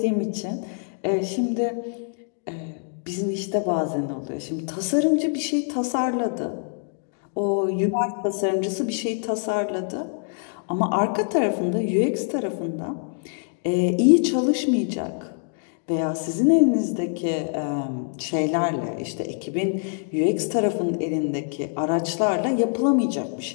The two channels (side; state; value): right; silent; 59 dB below the other